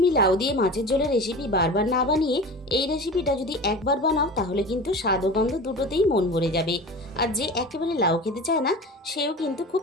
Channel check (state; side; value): normal; both; correlation 0.34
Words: লাউ দিয়ে মাছের ঝোলের রেসিপি বারবার না বানিয়ে এই রেসিপিটা যদি একবার বানাও তাহলে কিন্তু স্বাদ ও গন্ধ দুটোতেই মন ভরে যাবে। আর যে একেবারে লাউ খেতে চায় না সেও কিন্তু খুব